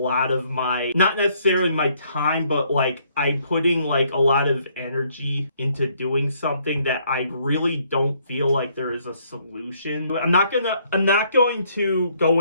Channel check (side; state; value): both; inverted; correlation -0.67